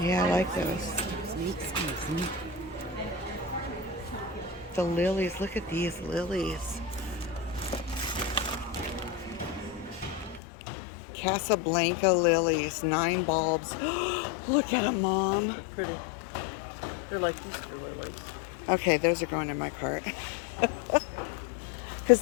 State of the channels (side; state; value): right; drops out; at 10.4 s